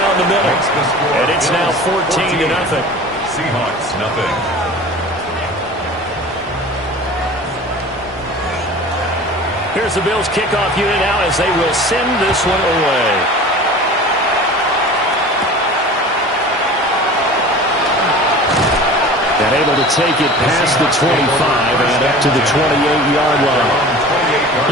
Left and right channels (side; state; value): both; normal; correlation 0.39